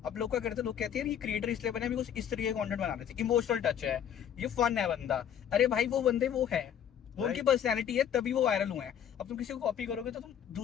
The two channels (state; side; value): quieter; right; 9.3 dB